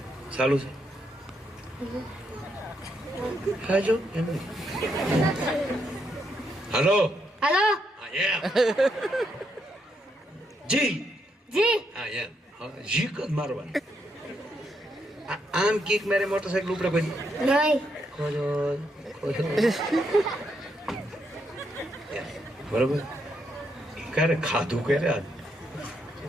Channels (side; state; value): both; normal; correlation 0.78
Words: ચાલુ છે હાલો हेलो જી जी હા એમ જી કદ મારવાનું. આમ કીક મારે મોટરસાઇકલ ઉપડે પછી नहीं બરોબર. ક્યારે ખાધું ક્યારે આજ